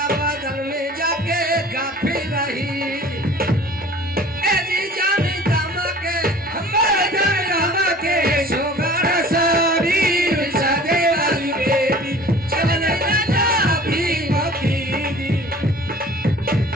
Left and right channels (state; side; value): normal; both; correlation 0.46